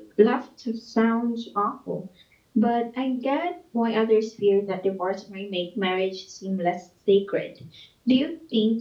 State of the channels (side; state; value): both; identical; correlation 1.00